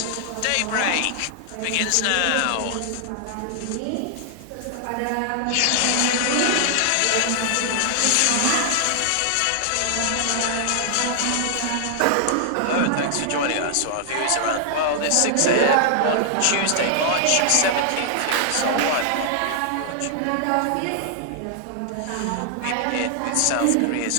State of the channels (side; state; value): both; different; correlation 0.00